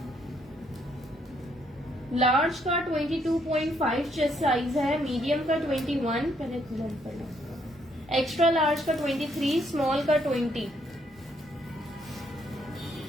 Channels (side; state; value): both; normal; correlation 0.71